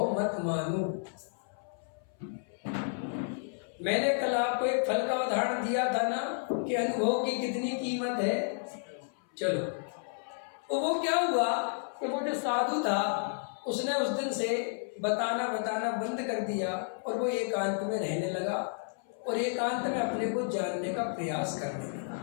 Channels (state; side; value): silent; right; 57 dB below the other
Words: मत मानो। मैंने कल आपको एक फल का उदाहरण दिया था ना कि अनुभव की कितनी कीमत है। चलो, तो वो क्या हुआ कि वो जो साधु था उसने उस दिन से बताना बंद कर दिया, और वो एकांत में रहने लगा, और एकांत में अपने को जानने का प्रयास करने लगा।